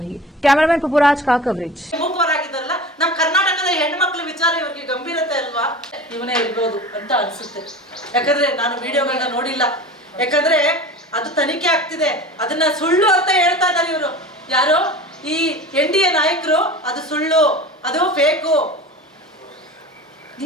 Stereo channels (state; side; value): normal; both; correlation 0.35